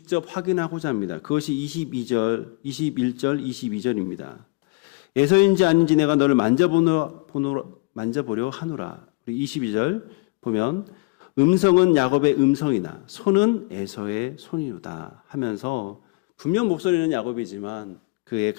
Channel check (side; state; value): right; quieter; 27.2 dB